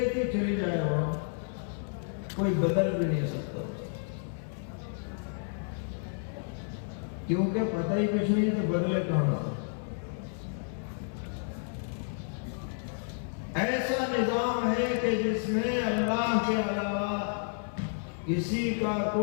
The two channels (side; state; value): right; silent; 57 dB below the other